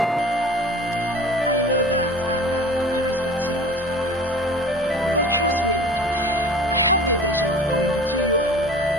I know that, and I respect you a lot for that. But trust me, I have the intention of coming between you and your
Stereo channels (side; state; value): both; normal; correlation 0.41